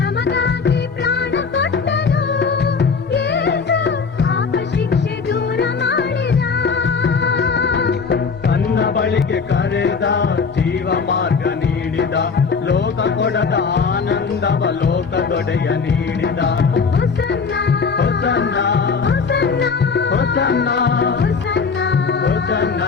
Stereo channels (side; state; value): right; quieter; 5.3 dB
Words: ಪ್ರಾಣ ಕೊಟ್ಟನು ಯೇಸು, ಪಾಪ ಶಿಕ್ಷೆ ದೂರ ಮಾಡಿದ. ತನ್ನ ಬಳಿಗೆ ಕರೆದ, ಜೀವ ಮಾರ್ಗ ನೀಡಿದ, ಲೋಕ ಕೊಡದ ಆನಂದವ ಲೋಕದೊಡೆಯ ನೀಡಿದ. ಹೊಸನ್ನ ಹೊಸನ್ನ ಹೊಸನ್ನ ಹೊಸನ್ನ ಹೊಸನ್ನ ಹೊಸನ್ನ